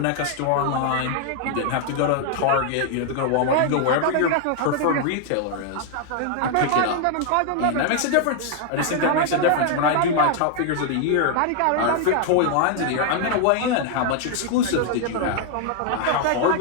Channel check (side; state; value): both; different; correlation 0.00